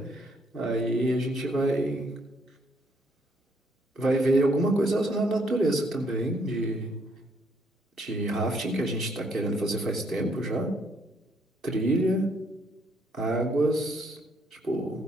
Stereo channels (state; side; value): normal; both; correlation 0.69